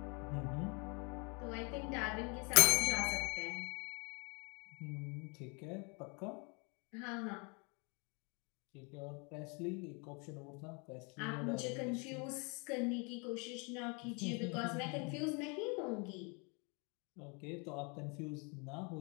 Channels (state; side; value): quieter; right; 33.0 dB